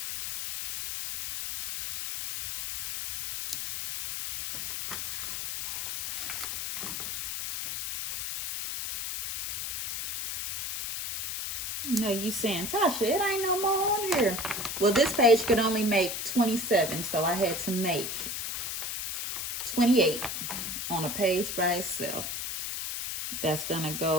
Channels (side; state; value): left; noise; hiss, 4 dB below the sound